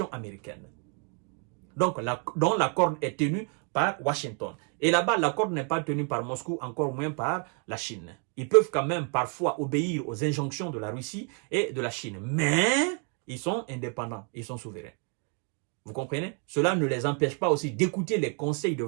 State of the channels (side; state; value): left; quieter; 37.1 dB